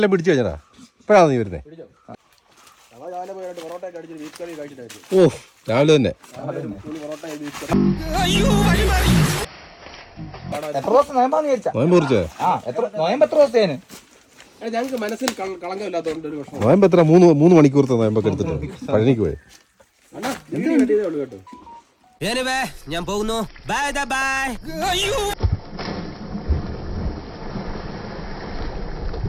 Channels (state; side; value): identical; both; correlation 1.00